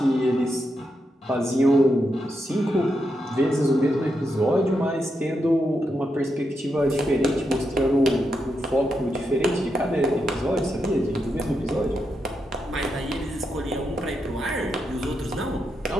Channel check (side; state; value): both; normal; correlation 0.84